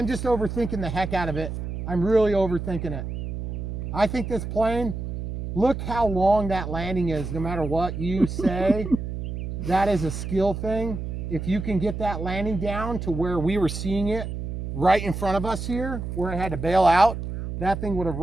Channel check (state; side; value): noise; right; hum, 6 dB below the sound